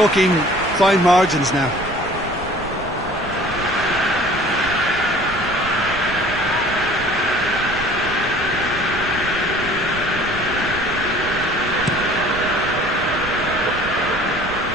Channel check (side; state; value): right; noise; rumble, 14 dB below the sound